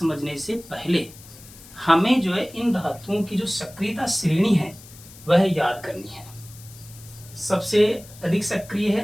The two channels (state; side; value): noise; left; hiss, 20 dB below the sound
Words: से पहले हमें जो है इन धातुओं की जो सक्रियता श्रेणी है वह याद करनी है। सबसे अधिक सक्रिय